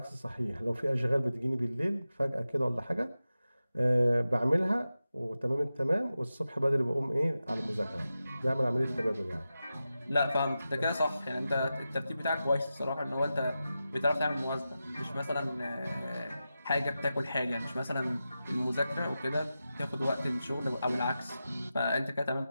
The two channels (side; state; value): both; inverted; correlation -0.92